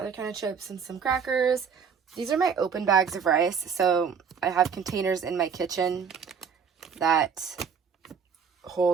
kind of chips, and some crackers. These are my open bags of rice. So I have containers in my kitchen that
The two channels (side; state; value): left; quieter; 6.6 dB